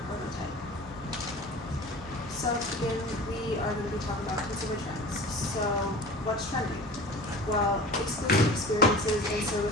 prototype. So to begin, we are going to be talking about consumer trends. So what's trending? Well, exclusive experiences and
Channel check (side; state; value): both; normal; correlation 0.38